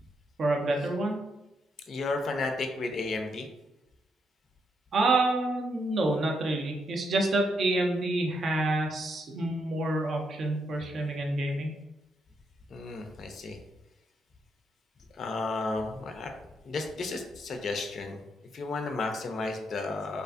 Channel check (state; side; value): normal; both; correlation 0.78